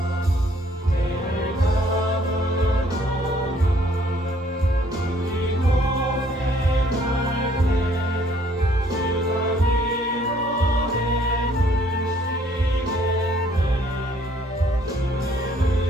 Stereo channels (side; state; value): both; normal; correlation 0.62